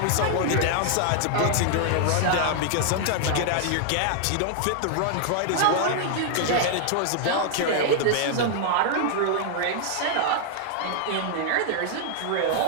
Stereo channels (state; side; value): different; both; correlation -0.01